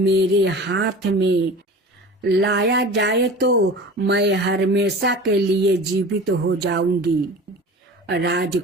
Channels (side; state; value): both; normal; correlation 0.37